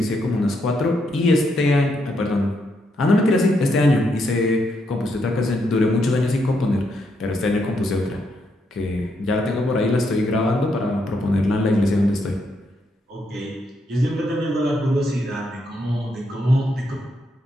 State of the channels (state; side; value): normal; both; correlation 0.78